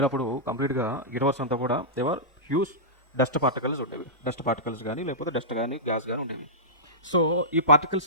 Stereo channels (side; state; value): both; normal; correlation -0.17